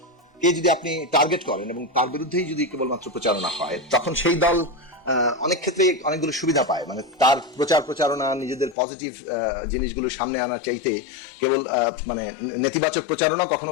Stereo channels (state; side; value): drops out; right; at 8.8 s